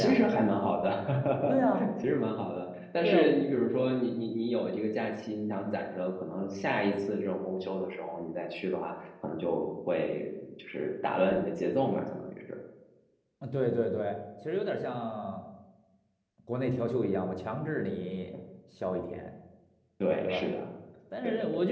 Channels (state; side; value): identical; both; correlation 1.00